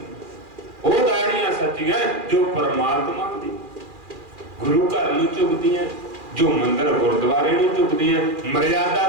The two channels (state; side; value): late; left; 2.4 ms